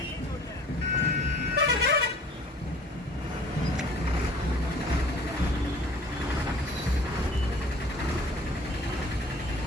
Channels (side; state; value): both; normal; correlation 0.50